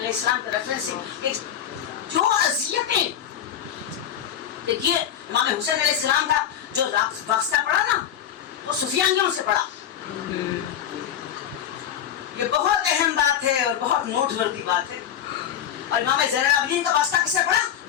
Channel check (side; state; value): right; quieter; 9.7 dB